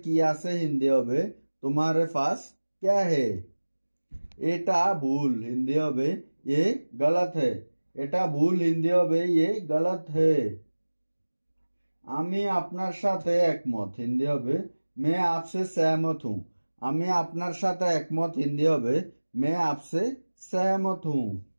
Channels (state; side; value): inverted; both; correlation -1.00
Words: কি আছে, হিন্দি হবে তোমারে পাস ক্যা হে। এটা ভুল, হিন্দি হবে ये गलत है। এটা ভুল, হিন্দি হবে ये गलत है। আমি আপনার সাথে একমত, হিন্দি হবে मैं आपसे सहमत हूँ। আমি আপনার সাথে একমত, হিন্দি হবে मैं आपसे सहमत हूँ।